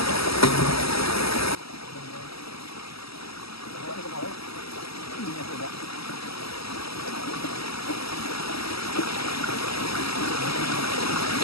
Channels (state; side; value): late; right; 0.76 ms